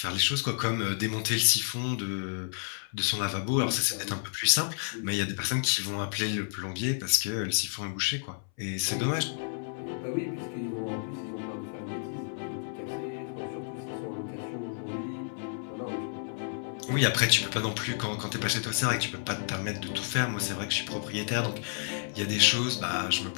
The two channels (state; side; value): silent; right; 57 dB below the other